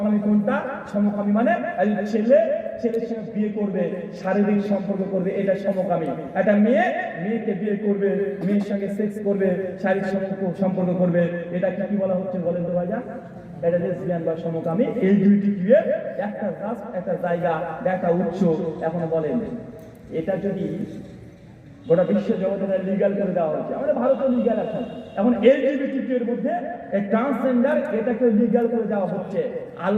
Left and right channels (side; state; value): both; identical; correlation 1.00